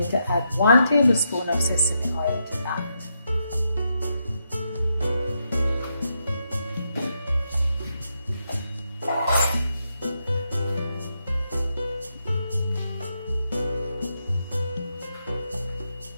to add 1 tablespoon of sesame oil to that.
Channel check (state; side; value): inverted; both; correlation -0.81